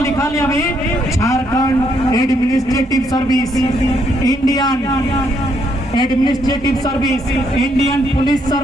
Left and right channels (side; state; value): both; normal; correlation 0.73